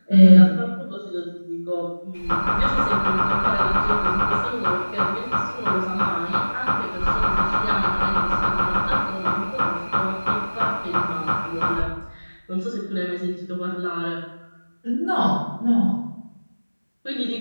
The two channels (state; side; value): inverted; both; correlation -1.00